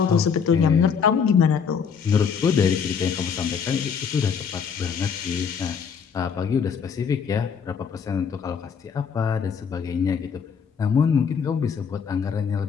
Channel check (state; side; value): quieter; right; 6.6 dB